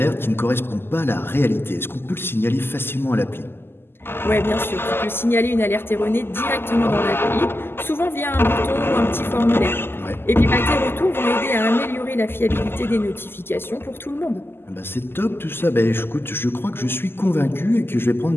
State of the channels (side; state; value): right; late; 0.11 ms